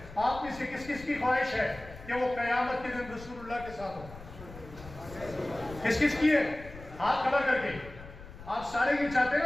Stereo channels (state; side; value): noise; left; rumble, 16 dB below the sound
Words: آپ میں سے کس کس کی خواہش ہے کہ وہ قیامت کے دن رسول اللہ کے ساتھ ہو؟ کس کس کی ہے؟ ہاتھ کھڑا کر کے آپ سارے یہ چاہتے ہیں